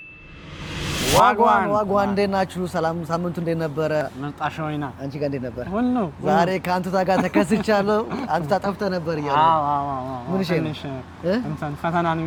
ዋጓን እንዴት ናችሁ? ሰላም ሳምንቱ እንዴት ነበረ? መጣሽ ወይና አንቺ ጋር እንዴት ነበር? ሁሉ ዛሬ ከአንቱታ ጋር ተከስቻለሁ። አንቱታ ጠፍተህ ነበር እያለ ምን እሺ ነው ፈተና ነው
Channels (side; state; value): both; identical; correlation 1.00